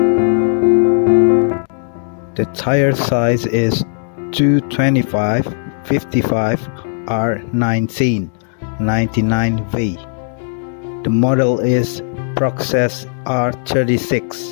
The tire size is 225/55 R19 99V. The model is Process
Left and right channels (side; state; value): right; silent; digital silence